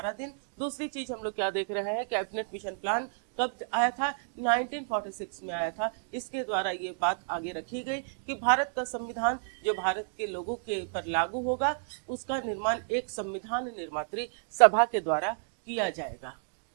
दिन। दूसरी चीज हम लोग क्या देख रहे हैं, कैबिनेट मिशन प्लान कब आया था? 1946 में आया था। इसके द्वारा ये बात आगे रखी गई कि भारत का संविधान जो भारत के लोगों के पर लागू होगा, उसका निर्माण एक संविधान निर्मात्री सभा के द्वारा किया जाएगा,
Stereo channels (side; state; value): left; silent; digital silence